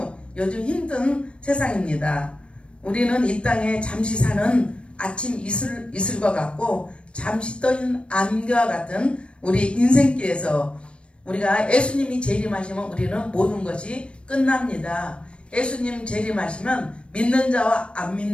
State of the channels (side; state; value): right; late; 0.059 ms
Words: 요즘 힘든 세상입니다. 우리는 이 땅에 잠시 사는 아침 이슬과 같고 잠시 떠있는 안개와 같은 우리 인생길에서 우리가 예수님이 재림하시면 우리는 모든 것이 끝납니다. 예수님 재림하시면 믿는 자와 안